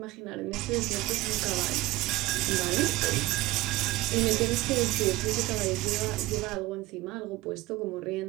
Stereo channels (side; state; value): left; quieter; 19.0 dB